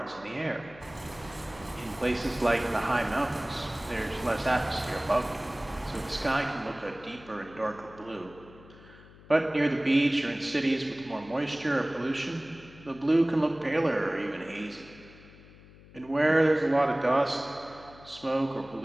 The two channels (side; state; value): left; noise; hum, 22 dB below the sound